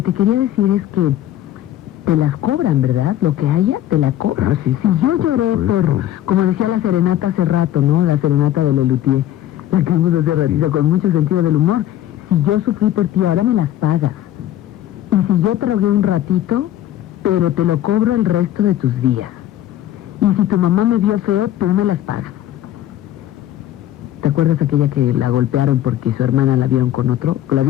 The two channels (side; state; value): right; quieter; 12.7 dB